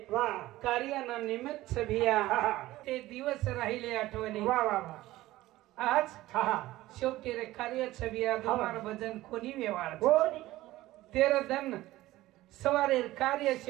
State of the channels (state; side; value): quieter; left; 16.8 dB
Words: कार्याना निमित्त भैया ते दिवस राहिले आठवणी आज शेवटी रे कार्य भैया तुम्हारा भजन कोणी व्यवहार तेरा धन सवारे कार्य